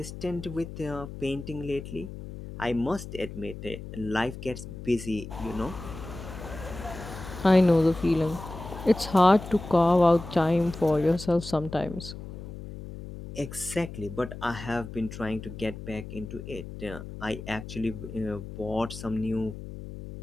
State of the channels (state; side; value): noise; left; hum, 11 dB below the sound